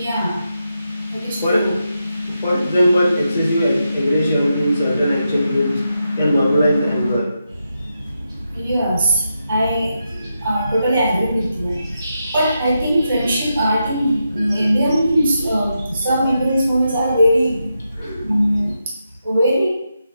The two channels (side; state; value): both; inverted; correlation -0.85